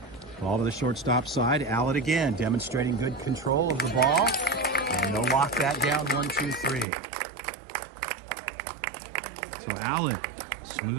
Ball to the shortstop side. Allett again, demonstrating good control of the ball. And they'll lock that down 1-2-3. So Allett,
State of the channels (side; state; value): left; drops out; at 6.9 s